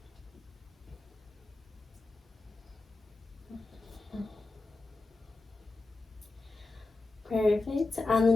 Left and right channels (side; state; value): right; quieter; 3.3 dB